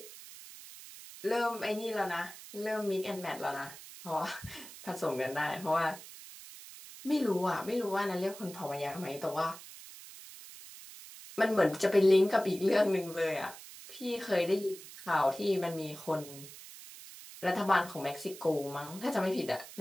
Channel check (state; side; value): noise; right; hiss, 15 dB below the sound